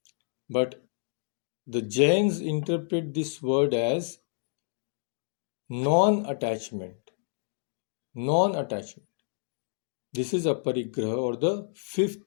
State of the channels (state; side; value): silent; right; digital silence